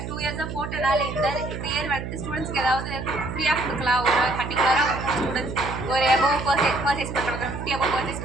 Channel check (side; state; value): right; noise; hum, 7 dB below the sound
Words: 2 இயர்ஸாக போட்டனால இந்த இயர் வந்துட்டு ஸ்டூடெண்ட்ஸ்க்கு ஏதாவது ஃப்ரீயாக கொடுக்கலாம். ஒரு பர்டிகுலராக ஸ்டூடெண்ட்ஸ் ஒரு எபோவ் பர்ச்சேஸ் பண்ணுறவங்க 50 எபோவ் பர்ச்சேஸ்